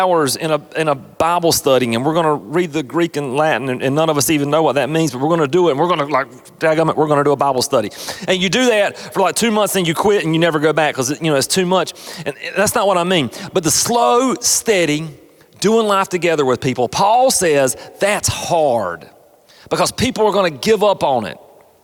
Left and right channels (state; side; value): identical; both; correlation 1.00